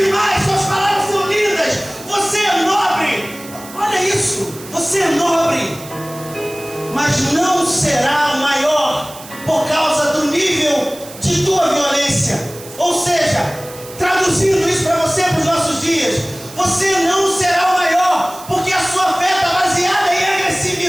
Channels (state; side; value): noise; right; hiss, 17 dB below the sound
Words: suas palavras são lindas, você é nobre. Olha isso, você é nobre, mas não será maior por causa do nível de tua violência. Ou seja, traduzindo isso para você, para os nossos dias, você não será o maior, porque a sua fé está baseada em